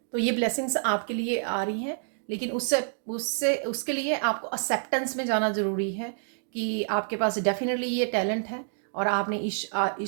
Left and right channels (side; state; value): left; silent; digital silence